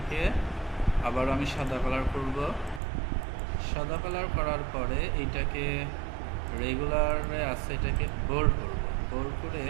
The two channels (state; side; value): drops out; left; at 2.8 s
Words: আবার আমি সাদা কালার করব। সাদা কালার করার পরে এইটাকে রেগুলারে আছে এটাকে বোল্ড করব। বোল্ড করে